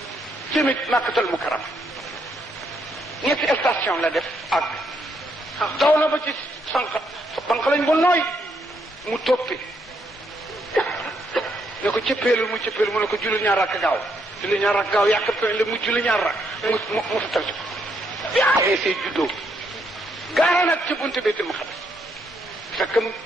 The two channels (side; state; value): both; normal; correlation 0.75